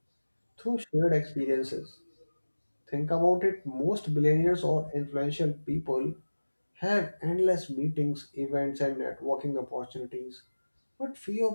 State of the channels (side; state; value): both; inverted; correlation -1.00